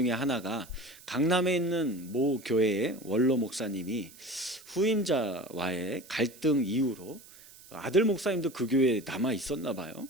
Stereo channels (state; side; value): noise; right; hiss, 21 dB below the sound